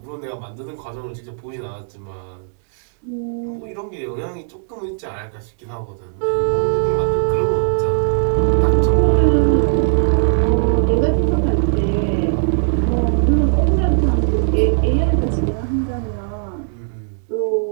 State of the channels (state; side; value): silent; left; digital silence